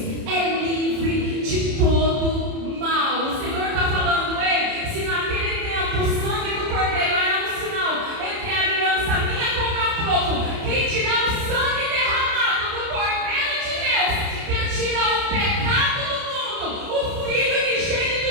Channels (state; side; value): late; left; 30 ms